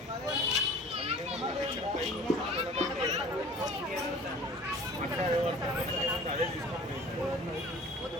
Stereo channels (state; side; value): normal; both; correlation 0.45